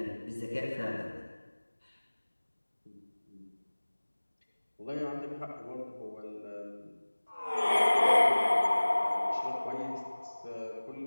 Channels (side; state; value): both; inverted; correlation -1.00